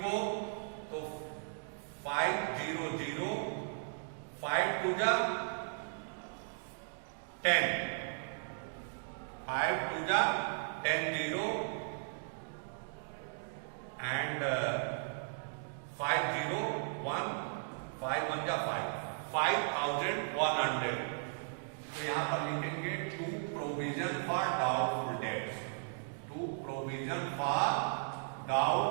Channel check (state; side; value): silent; left; digital silence